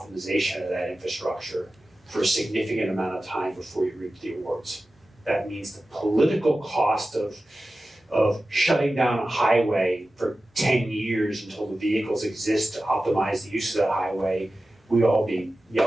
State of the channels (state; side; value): normal; both; correlation 0.94